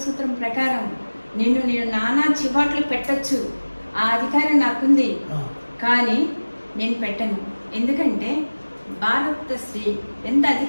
సూత్రం ప్రకారం నేను నానా చివాట్లు పెట్టచ్చు, ఆ అధికారం నాకుంది. కానీ నేను పెట్టను. ఎందుకంటే భారత స్త్రీ ఎంత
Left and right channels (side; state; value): both; inverted; correlation -1.00